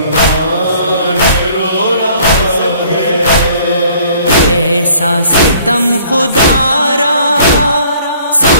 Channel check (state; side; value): inverted; both; correlation -0.57